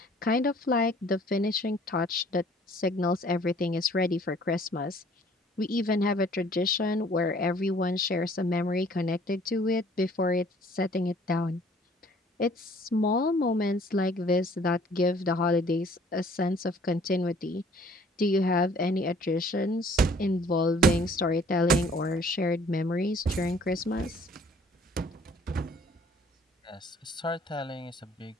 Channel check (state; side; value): normal; both; correlation 0.56